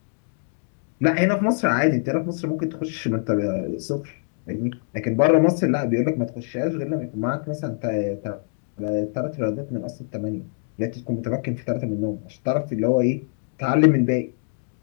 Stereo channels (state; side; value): silent; right; digital silence